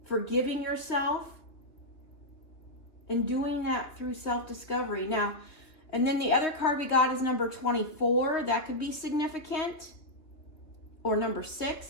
forgiving yourself, and doing that through self-discovery. Now, and then the other card we got is number 24. That could be significant. Or number 6,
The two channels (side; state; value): right; late; 3.2 ms